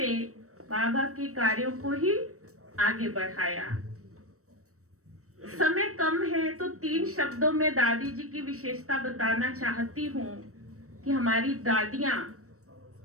बाबा के कार्यों को ही आगे बढ़ाया। समय कम है तो 3 शब्दों में दादी जी की विशेषता बताना चाहती हूँ कि हमारी दादियां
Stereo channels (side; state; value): left; late; 0.65 ms